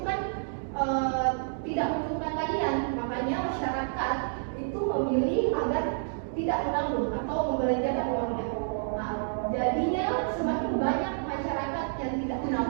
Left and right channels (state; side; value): silent; left; digital silence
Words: kan tidak menguntungkan kalian. Makanya masyarakat itu memilih agar tidak menabung atau membelanjakan uangnya. Nah, jadinya semakin banyak masyarakat yang tidak